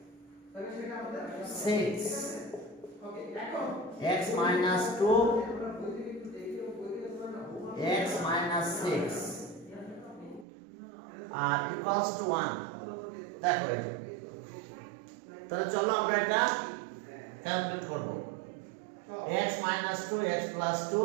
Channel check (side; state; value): left; drops out; at 10.5 s